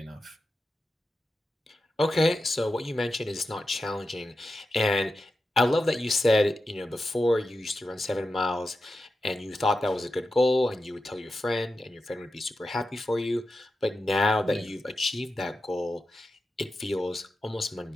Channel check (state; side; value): normal; both; correlation 0.91